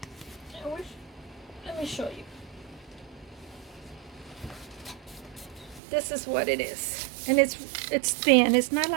me show you. This is what it is. And it's thin. It's not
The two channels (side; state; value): left; drops out; at 5.8 s